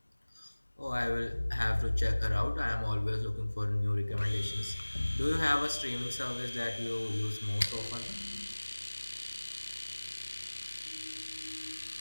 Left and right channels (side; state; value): both; inverted; correlation -1.00